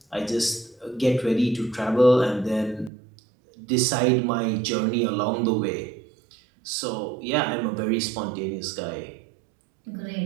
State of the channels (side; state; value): left; drops out; at 2.9 s